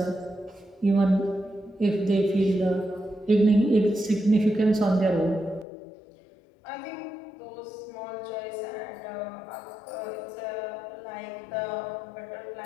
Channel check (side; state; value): right; drops out; at 5.7 s